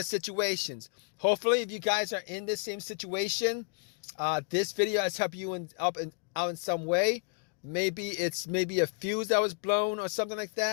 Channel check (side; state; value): right; quieter; 38.3 dB